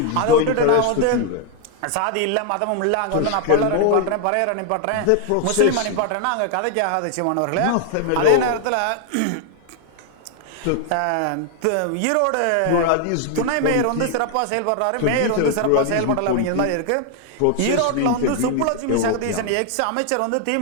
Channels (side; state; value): both; different; correlation 0.00